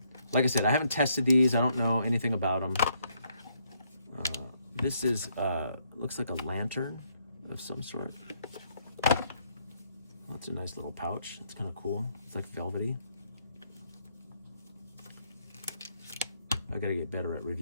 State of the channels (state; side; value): inverted; both; correlation -0.72